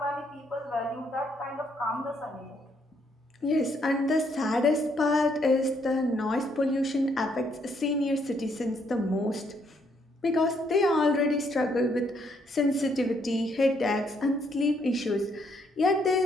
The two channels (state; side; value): normal; both; correlation 0.71